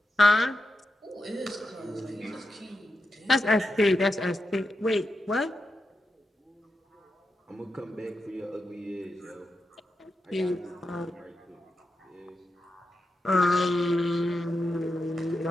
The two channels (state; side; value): normal; both; correlation 0.88